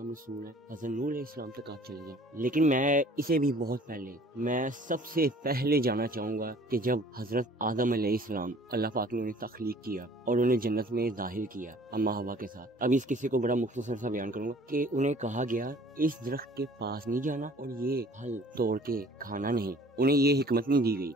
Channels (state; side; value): normal; both; correlation 0.52